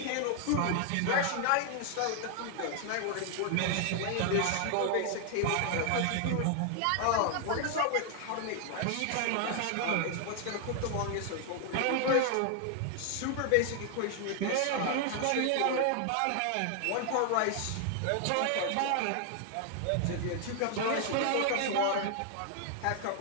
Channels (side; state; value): both; different; correlation 0.00